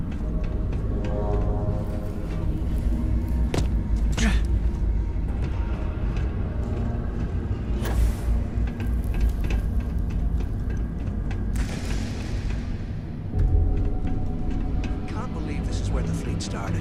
Can't believe this is where the fleet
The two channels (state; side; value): identical; both; correlation 1.00